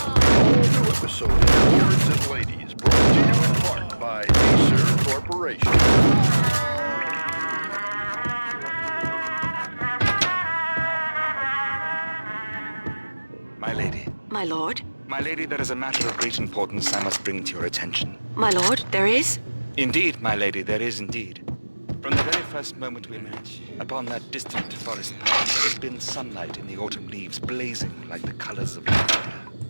All new episode of Lords and Ladies brought to you in part by Acer Corporation. My lady. My lord? My lady, there is a matter of great importance I must bring to your attention. My lord, there is? Indeed, my lady, there is indeed. From the very first moment we met, upon that distant forest path, there has been sunlight in the autumn leaves blazing like the colors of fire.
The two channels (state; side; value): inverted; both; correlation -1.00